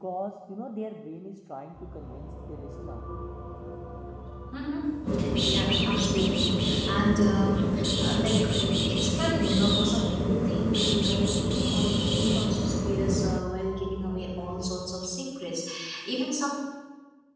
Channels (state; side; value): identical; both; correlation 1.00